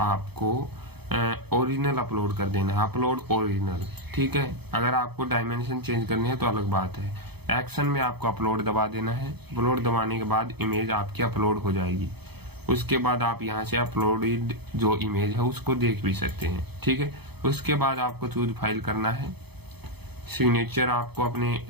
ओरिजिनल अपलोड कर देना है, अपलोड ओरिजिनल। ठीक है, अगर आपको डायमेंशन चेंज करनी है तो अलग बात है। एक्शन में आपको अपलोड दबा देना है। अपलोड दबाने के बाद इमेज आपकी अपलोड हो जाएगी। उसके बाद आप यहाँ से अपलोडेड जो इमेज है उसको देख भी सकते हैं। ठीक है, उसके बाद आपको चूज फाइल करना है। सिग्नेचर आपको अपने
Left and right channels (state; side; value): late; left; 0.98 ms